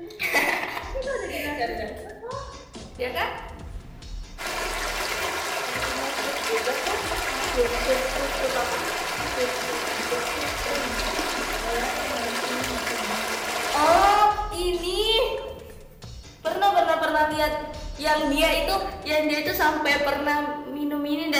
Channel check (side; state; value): both; identical; correlation 1.00